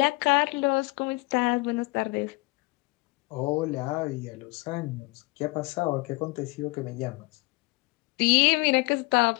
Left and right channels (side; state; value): right; quieter; 25.7 dB